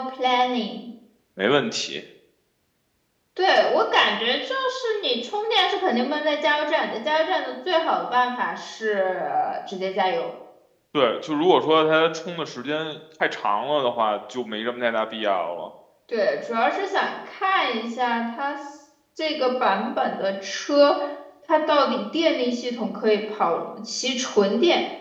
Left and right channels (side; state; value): both; identical; correlation 1.00